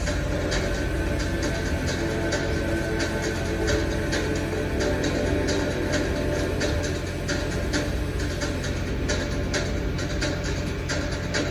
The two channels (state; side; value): identical; both; correlation 1.00